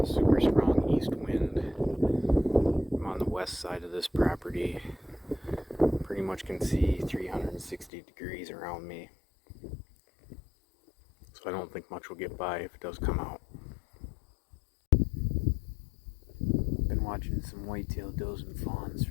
super strong east wind. I'm on the west side of this property. Pretty much can see 360 degrees around me. So I don't think much will get by if it does come out. Been watching some whitetail does and fawns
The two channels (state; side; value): drops out; right; at 7.9 s